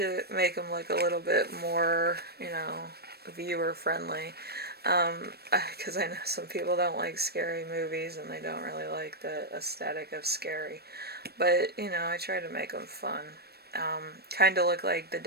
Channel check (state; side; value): late; left; 0.47 ms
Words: make them look a little bit more, viewer friendly. Because I know some people don't like scary movies, and they don't really like the aesthetic of scary. But, I try to make them fun. Kind of look like the